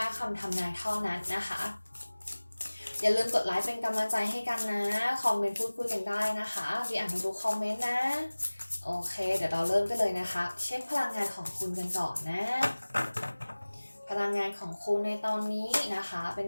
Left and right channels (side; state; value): both; inverted; correlation -1.00